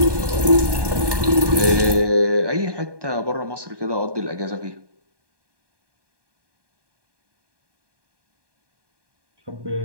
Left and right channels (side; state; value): left; late; 1.2 ms